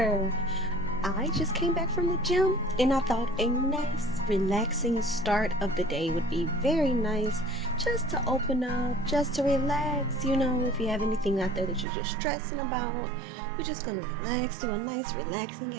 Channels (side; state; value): left; drops out; at 11.9 s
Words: I just came back from the gym and I thought a nice, relaxing start of the day would be very nice just to open up, just to relax. You know, if you have anything out there that you're just stressing about, we're just gonna relax, do a nice, relaxing